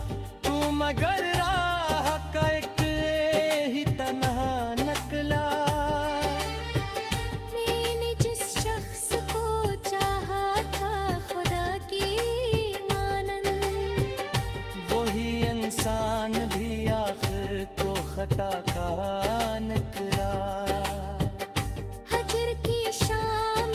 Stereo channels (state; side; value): identical; both; correlation 1.00